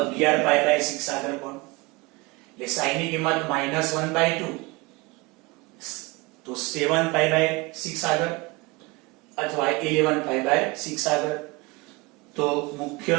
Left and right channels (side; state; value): left; quieter; 24.6 dB